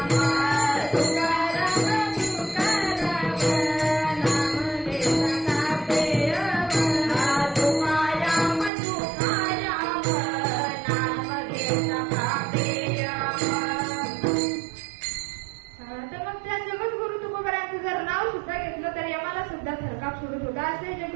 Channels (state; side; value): drops out; left; at 8.7 s